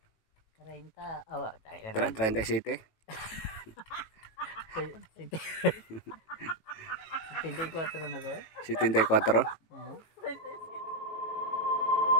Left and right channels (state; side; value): late; right; 18 ms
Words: 30, awa, 37. 74 na ko eh. 74. Oo.